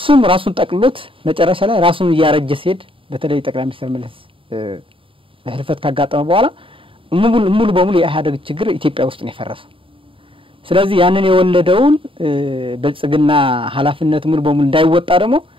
ራሱን ጠቅልሎት መጨረሻ ላይ ራሱን እያረጀ ሲሄድ በተለይ ጠቅላይ ሚኒስትር መለስ ህልፈት ካጋጠመ በኋላ ሙሉ በሙሉ የኢህአዴግ ችግር ኢትዮጵያ ውስጥ ነው የፈረሰው። ስለዚህ ያንን የወለደውን ብልጽግና ኃላፊነት ሙሉ በሙሉ እንዳይወጣ ደግሞ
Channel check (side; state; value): left; late; 0.25 ms